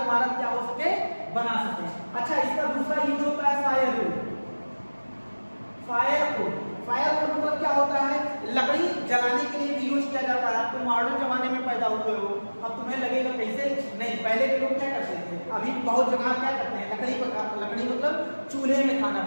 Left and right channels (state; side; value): inverted; both; correlation -1.00